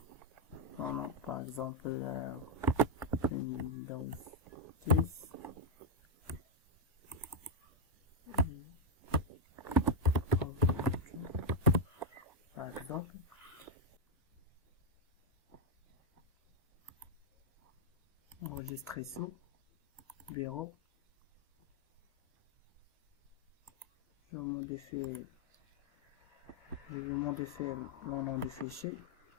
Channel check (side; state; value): both; normal; correlation 0.01